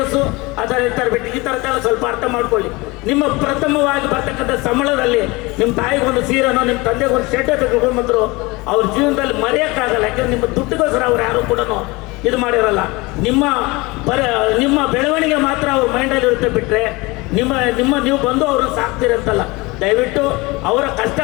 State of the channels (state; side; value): quieter; right; 23.8 dB